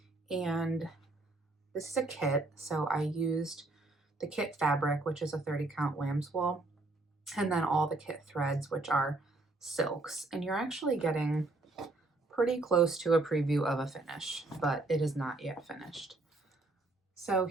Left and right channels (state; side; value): quieter; left; 3.1 dB